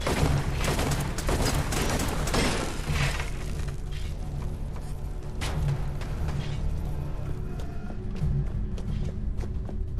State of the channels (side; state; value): both; identical; correlation 1.00